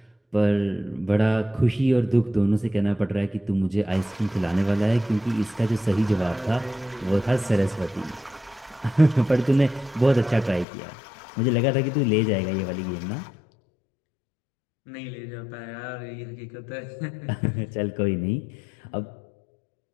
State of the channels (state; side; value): drops out; right; at 10.7 s